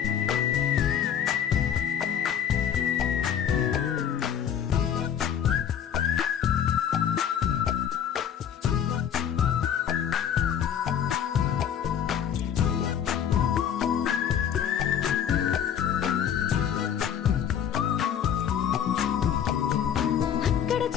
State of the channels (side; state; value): right; quieter; 8.8 dB